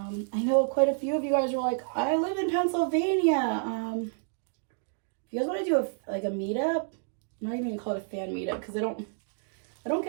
know quite a few of you guys were like, I live in Pennsylvania. If you guys want to do a meetup, I'm not even going to call it a fan meetup, because I don't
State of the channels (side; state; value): left; silent; digital silence